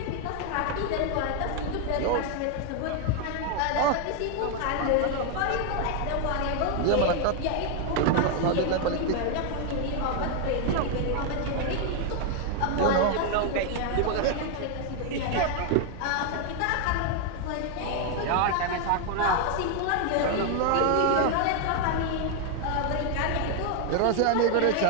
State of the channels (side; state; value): both; different; correlation 0.00